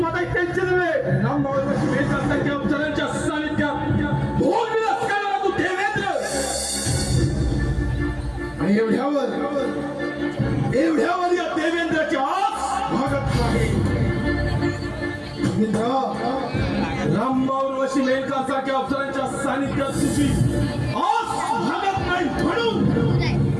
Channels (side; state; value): both; identical; correlation 1.00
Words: काही टेन्शन नव्हे. रामबाबाची भेट करता उपचारांच्या सानिध्यात भोग विलास करणारा तू देवेंद्र. आणि एवढ्यावर या देवेंद्राची आस भागत नाही. रामबावर वशी मेनकासारख्या अफसरांच्या सानिध्यात तुझी आस भागत नाही. म्हणून